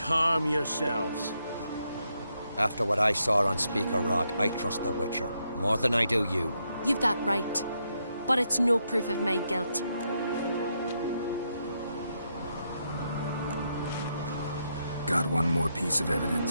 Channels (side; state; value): both; inverted; correlation -0.80